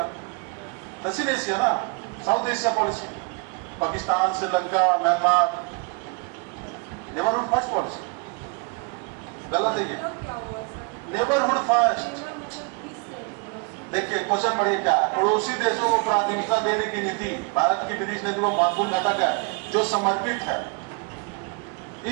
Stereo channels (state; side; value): quieter; left; 32.1 dB